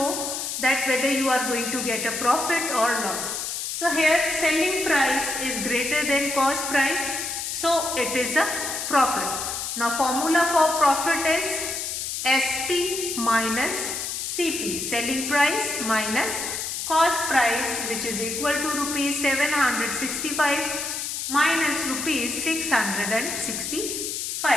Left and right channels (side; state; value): left; noise; hiss, 4 dB below the sound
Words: that whether you are going to get a profit or loss. So here selling price is greater than cost price, so it is a profit. Now formula for profit is SP minus CP, selling price minus cost price, which is equal to rupees 765 minus rupees 665.